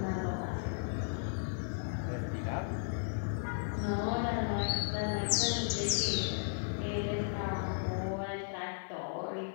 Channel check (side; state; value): right; silent; digital silence